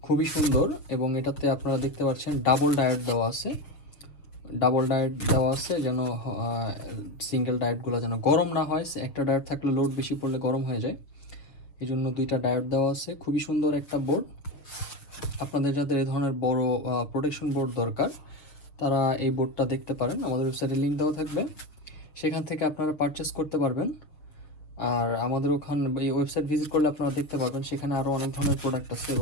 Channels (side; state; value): right; late; 6.8 ms